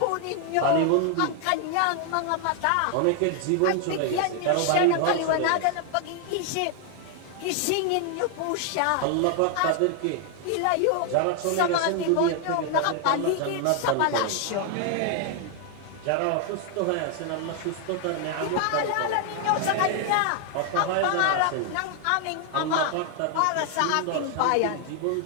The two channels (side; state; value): both; different; correlation 0.00